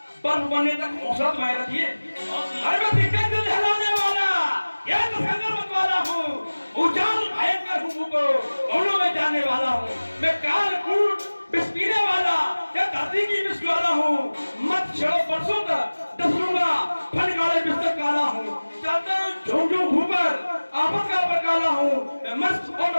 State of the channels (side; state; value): both; inverted; correlation -1.00